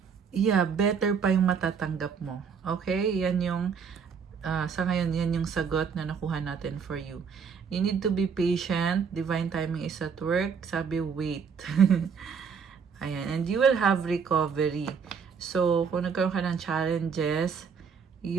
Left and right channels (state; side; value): quieter; left; 6.3 dB